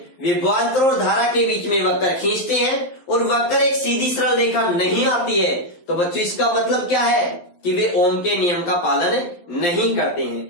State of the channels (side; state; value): right; late; 11 ms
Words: विभवांतर और धारा के बीच में वक्र खींचते हैं और वक्र एक सीधी सरल रेखा नहीं आती है, तो बच्चों इसका मतलब क्या है कि वे ओम के नियम का पालन नहीं करते